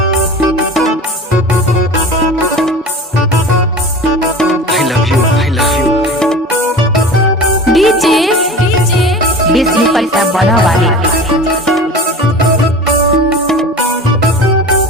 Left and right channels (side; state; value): both; normal; correlation 0.35